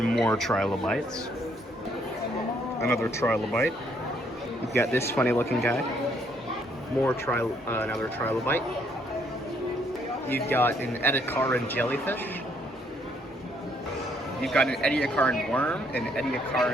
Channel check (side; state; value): both; normal; correlation 0.68